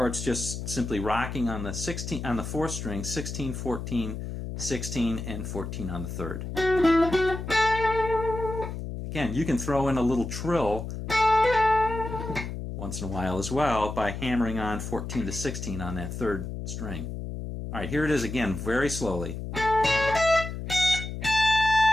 just simply rocking on the 4th string, 16, 14, 16, and 14 on the 3rd. Again, you can throw in a little trill once in a while as well by hammering on 14 to 16 on that 3rd string. All right, here it is again, very slowly.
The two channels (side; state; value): left; noise; hum, 6 dB below the sound